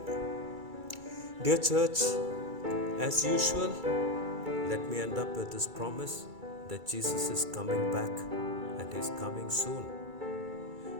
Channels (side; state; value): left; late; 2.3 ms